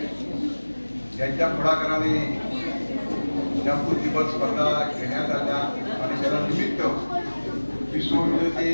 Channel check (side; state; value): both; inverted; correlation -1.00